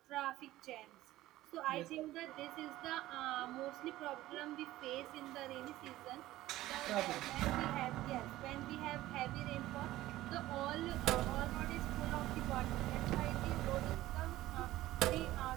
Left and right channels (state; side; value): quieter; left; 15.9 dB